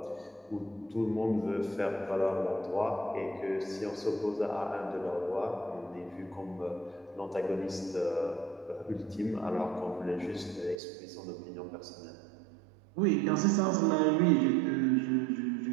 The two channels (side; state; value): left; drops out; at 10.8 s